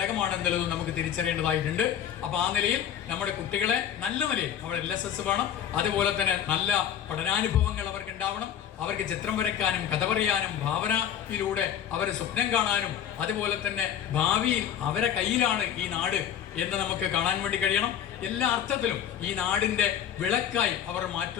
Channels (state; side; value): quieter; right; 9.6 dB